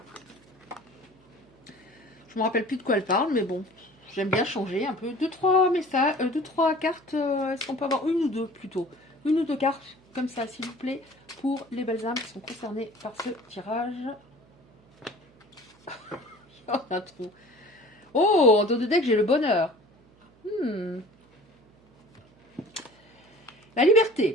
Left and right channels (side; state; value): right; noise; hum, 30 dB below the sound